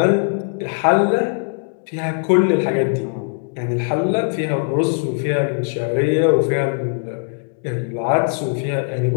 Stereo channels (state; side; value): silent; right; 60 dB below the other